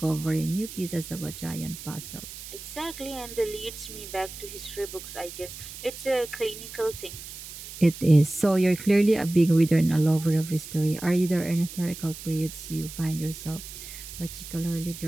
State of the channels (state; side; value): noise; right; hiss, 12 dB below the sound